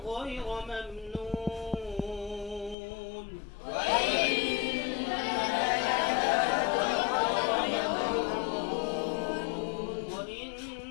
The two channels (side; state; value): right; drops out; at 2.8 s